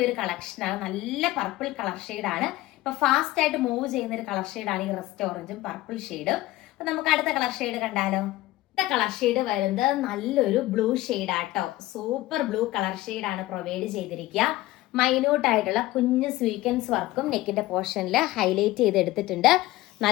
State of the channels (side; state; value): right; quieter; 17.5 dB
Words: ഒരു കളക്ഷനാണ്. നല്ല പർപ്പിൾ കളർ ഷെയ്ഡാണ്. ഇപ്പൊ ഫാസ്റ്റ് ആയിട്ട് മൂവ് ചെയ്യുന്ന ഒരു കളർ ഷെയ്ഡാണ് ഈ റസ്റ്റ് ഓറഞ്ചും പർപ്പിൾ ഷെയ്ഡും. അപ്പൊ നമുക്ക് അടുത്ത കളർ ഷെയ്ഡ് കണ്ടാലോ? അടുത്ത കളർ ഷെയ്ഡ് വരുന്നത് നല്ലൊരു ബ്ലൂ ഷെയ്ഡ് ആട്ടോ. സൂപ്പർ ബ്ലൂ കളർ ഷെയ്ഡാണ് പ്രൊവൈഡ് ചെയ്തിരിക്കുക. മൈന്യൂട്ട് ആയിട്ടുള്ള കുഞ്ഞ് സ്വീക്വൻസ് വർക്കും നെക്കിന്റെ പോർഷനിൽ ഹൈലൈറ്റ് ചെയ്ത് എടുത്തിട്ടുണ്ട്.